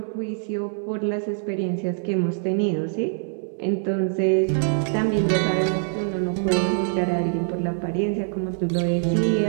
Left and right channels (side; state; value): left; silent; digital silence